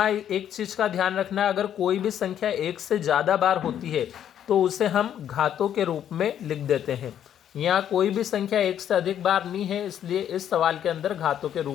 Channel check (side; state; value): right; quieter; 10.0 dB